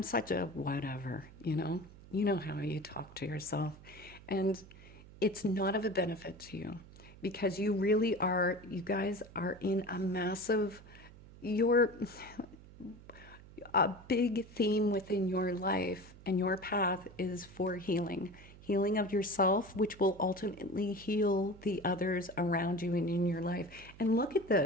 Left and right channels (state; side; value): noise; right; hum, 19 dB below the sound